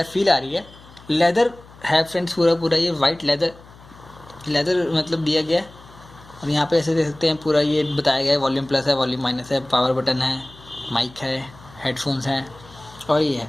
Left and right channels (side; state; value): left; noise; hum, 22 dB below the sound